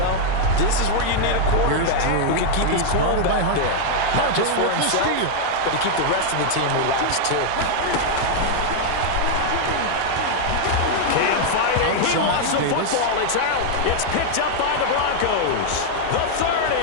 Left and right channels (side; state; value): both; different; correlation -0.01